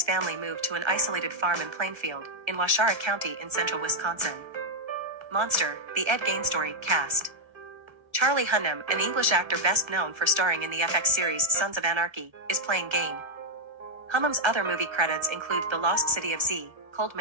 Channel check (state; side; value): late; left; 1.3 ms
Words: family moved to an isolated farm in Plainfield, in Waushara County in central Wisconsin. Monster, the Ed Gain story, cast. Charlie Hunnam, an English actor best known for starring in the FX series Sons of Anarchy, is playing Gain. Hunnam's other movie credits include The Lost City of Z, Cold